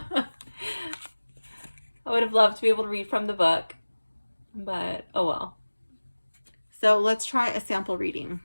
would have loved to be able to read from the book, but oh well. So let's try a sample reading.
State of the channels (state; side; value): inverted; both; correlation -1.00